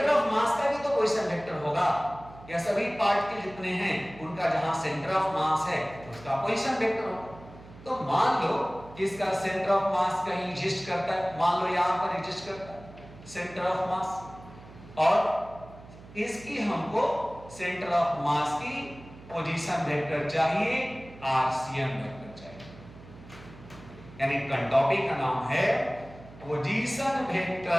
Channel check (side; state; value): right; noise; hum, 19 dB below the sound